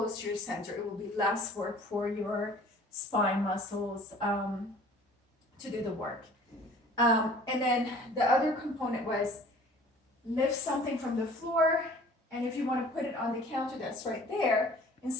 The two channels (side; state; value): both; normal; correlation 0.49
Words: to your center. It will be less work for your spine muscles to do the work. And then the other component was lift something from the floor, and if you want to put it on the counter that's right there,